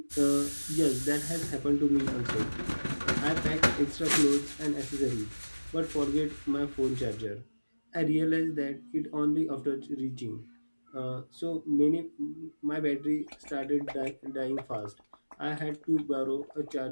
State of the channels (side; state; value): both; inverted; correlation -1.00